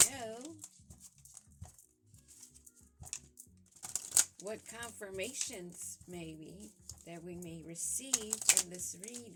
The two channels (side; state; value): both; identical; correlation 1.00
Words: know. What confirmations maybe that we may receive in this